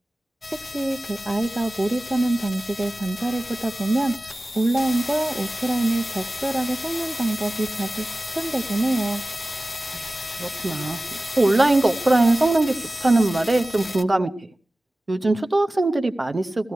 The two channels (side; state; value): both; normal; correlation 0.96